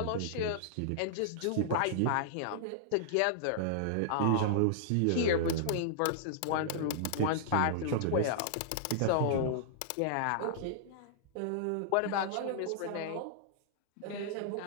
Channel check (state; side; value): different; both; correlation -0.01